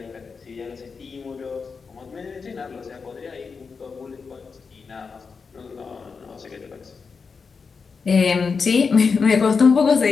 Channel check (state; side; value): quieter; right; 5.2 dB